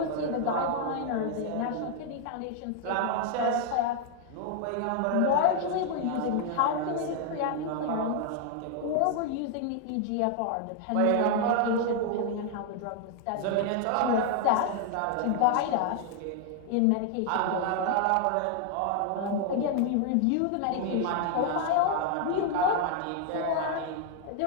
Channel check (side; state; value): both; different; correlation 0.00